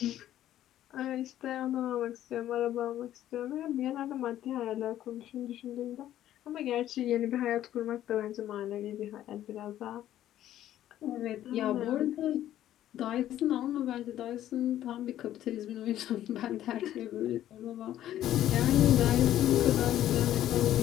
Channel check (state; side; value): quieter; right; 12.4 dB